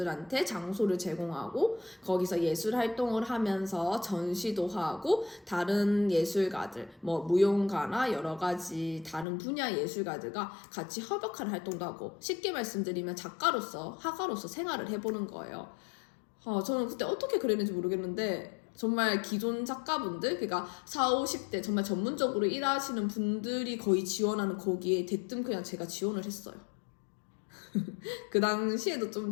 장소를 제공하고 거기서 예술 활동을 하면서 전시도 하고 다른 예술가들 뭐 무용가나 여러 가지 다른 분야 예술가들과 같이 협업하는 활동도 하고 쉽게 말씀드리면 작가로서 화가로서 생활을 해보는 거예요. 저는 그때 어떻게 그랬는지 모르겠는데 정말 기존 작가분들 그러니까 40, 50대 정말 전문적으로 일하시는 분들이 거의 지원하는 거기에 대뜸 그냥 제가 지원을 했어요. 그 당시에도 좀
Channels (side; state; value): right; drops out; at 9.2 s